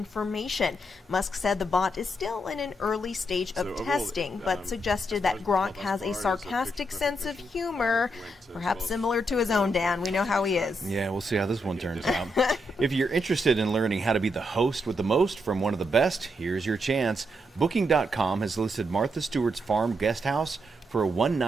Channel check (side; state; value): both; normal; correlation 0.80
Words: Musk said the bot is still in an early stage of testing, but suggested that Grok has a sarcastic sense of humor, perhaps similar to his own Dan. We know how he is. Yeah, we'll see how this one turns out. If you're interested in learning how to be the host with the most from one of the best, here's your chance. Booking.com has listed Martha Stewart's farm guest house for a